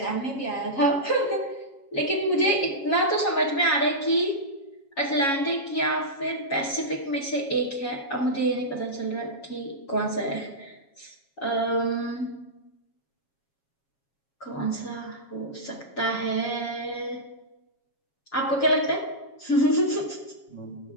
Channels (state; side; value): late; right; 7.3 ms